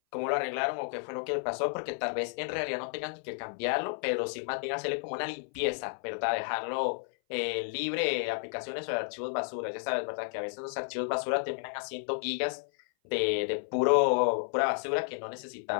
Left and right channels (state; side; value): silent; right; 57 dB below the other